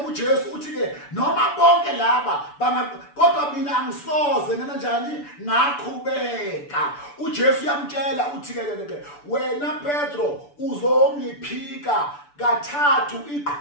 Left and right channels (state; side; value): late; right; 6.9 ms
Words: uthi ke noma bonke laba kodwa mina angisoze kanjani ngakhubeka. uJesu yamtshela uthi ke wena Petro uzongiphika kathathu